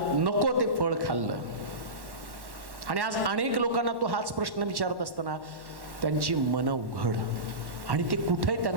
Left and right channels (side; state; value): left; late; 1.1 ms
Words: नको ते फळ खाल्लं. आणि आज अनेक लोकांना तो हाच प्रश्न विचारत असताना त्यांची मन उघड आणि ते कुठे